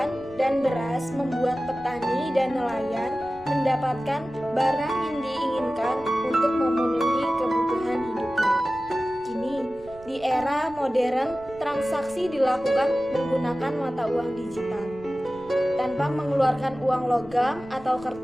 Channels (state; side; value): noise; right; rumble, 22 dB below the sound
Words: dan beras membuat petani dan nelayan mendapatkan barang yang diinginkan untuk memenuhi kebutuhan hidupnya. Kini, di era modern, transaksi dilakukan menggunakan mata uang digital tanpa mengeluarkan uang logam atau